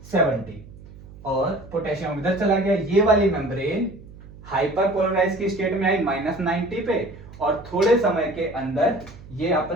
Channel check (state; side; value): noise; right; hum, 18 dB below the sound